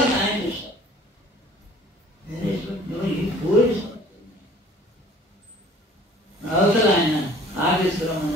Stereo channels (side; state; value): both; normal; correlation 0.51